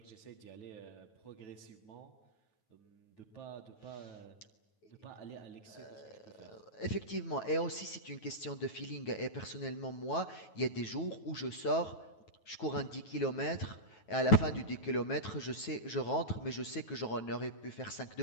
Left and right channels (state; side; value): late; right; 9.3 ms